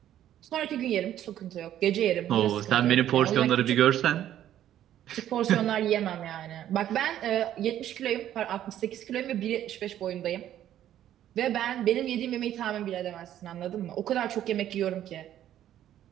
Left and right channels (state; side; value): quieter; left; 11.6 dB